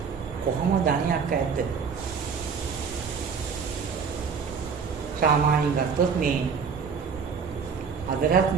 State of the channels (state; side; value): quieter; left; 6.1 dB